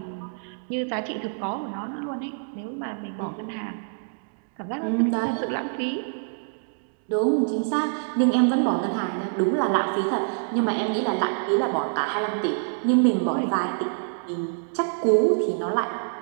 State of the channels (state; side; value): silent; left; digital silence